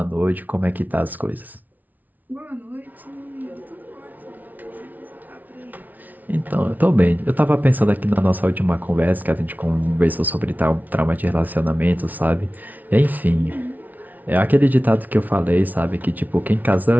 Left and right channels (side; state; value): left; late; 0.078 ms